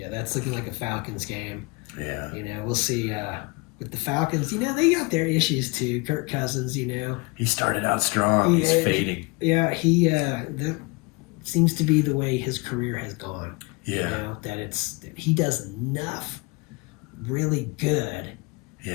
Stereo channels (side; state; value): right; quieter; 27.1 dB